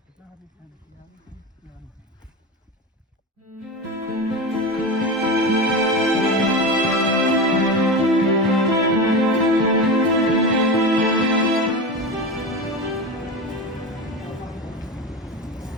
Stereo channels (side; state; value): both; normal; correlation 0.23